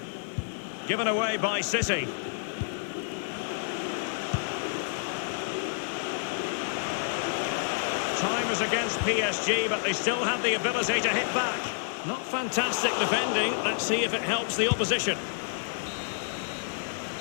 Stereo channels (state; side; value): silent; right; digital silence